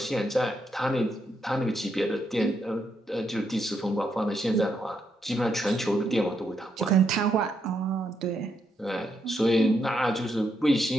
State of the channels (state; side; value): normal; both; correlation 0.79